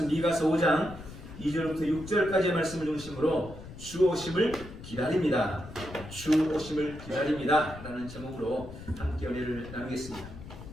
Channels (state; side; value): noise; left; rumble, 14 dB below the sound